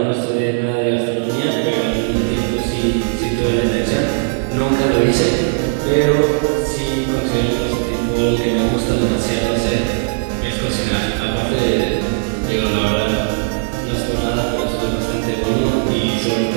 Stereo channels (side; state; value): left; silent; digital silence